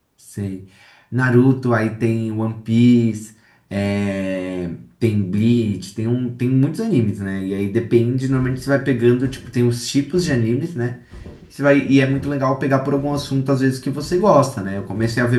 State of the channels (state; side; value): identical; both; correlation 1.00